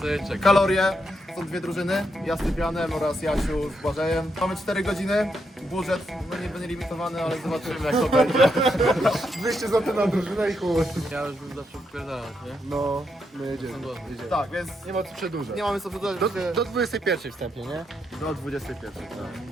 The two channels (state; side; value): normal; both; correlation 0.80